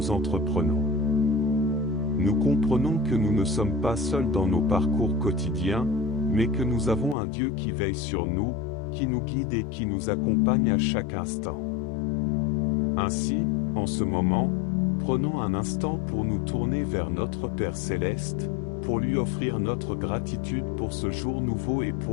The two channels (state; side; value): drops out; right; at 7.2 s